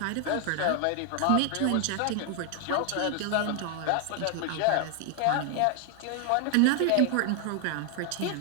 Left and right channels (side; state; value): both; different; correlation 0.00